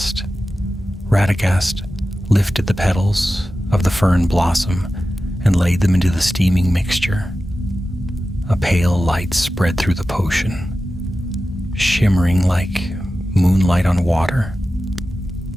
Radagast lifted the petals of the fern blossom and laid them into the steaming mixture. A pale light spread through the potion, shimmering like moonlight on water.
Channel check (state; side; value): normal; both; correlation 0.94